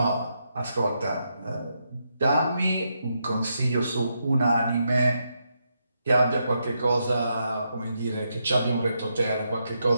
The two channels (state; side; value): inverted; both; correlation -0.82